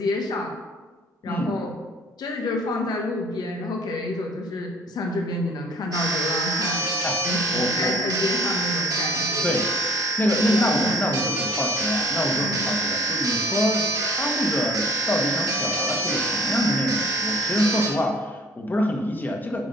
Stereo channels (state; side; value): normal; both; correlation 0.52